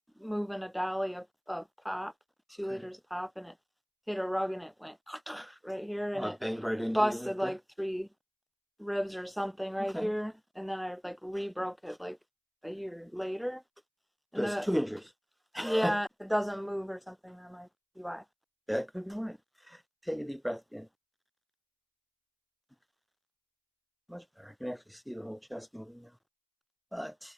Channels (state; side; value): identical; both; correlation 1.00